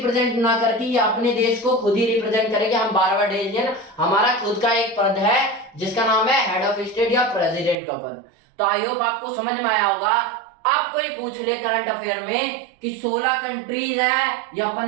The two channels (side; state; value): left; drops out; at 7.8 s